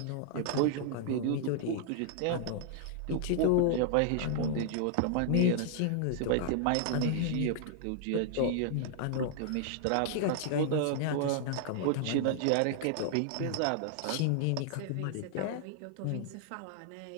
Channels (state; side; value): different; both; correlation 0.00